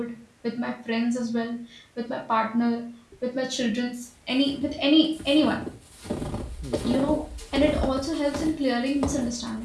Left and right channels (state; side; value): identical; both; correlation 1.00